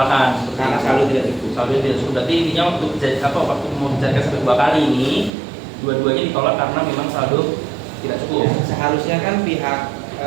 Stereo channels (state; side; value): drops out; left; at 5.3 s